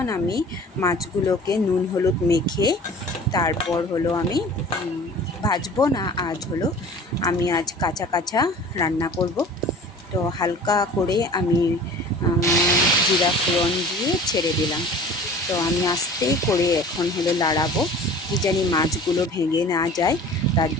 আমি মাছগুলোকে নুন হলুদ মেখে তারপর হলো আমি ভাজবো না, আমি আজ কাঁচা কাঁচা রান্না করব। তো হালকা করে আমি জিরা ফোড়ন দিয়ে ছেড়ে দিলাম। তো আমি আস্তে করে এখন হলো লাড়াবো, কি জানি মাছগুলো ভেঙে না যায়, তার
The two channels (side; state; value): both; normal; correlation 0.43